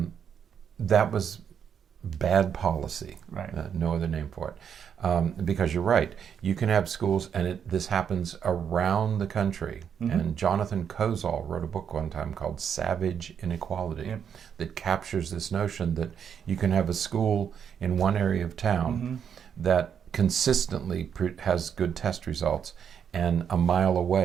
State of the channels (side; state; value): left; quieter; 7.9 dB